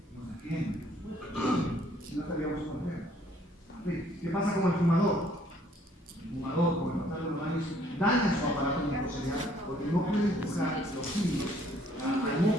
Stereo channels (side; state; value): both; normal; correlation 0.62